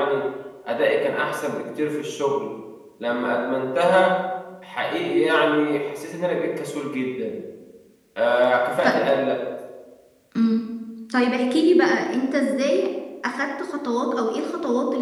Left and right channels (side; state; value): both; identical; correlation 1.00